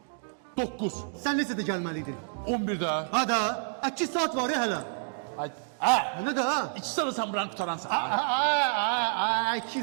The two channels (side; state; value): left; silent; digital silence